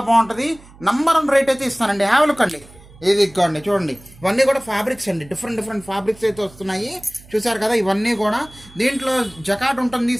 బాగుంటుంది. నంబర్ 1 రేట్ అయితే ఇస్తానండి. హ్యావ్ లుక్ అండి. ఇది ఇదిగోండి చూడండి, ఇవన్నీ కూడా ఫ్యాబ్రిక్స్ అండి. డిఫరెంట్ ఫ్యాబ్రిక్స్ అయితే వస్తున్నాయి. చూసారు కదా, ఇవన్నీ కూడా దీంట్లో జకాట్ ఉంటుంది,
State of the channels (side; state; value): right; noise; hum, 23 dB below the sound